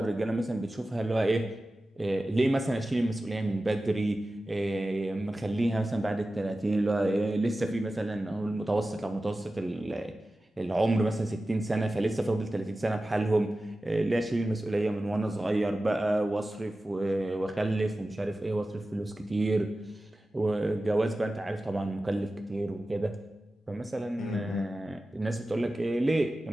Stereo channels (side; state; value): both; normal; correlation 0.95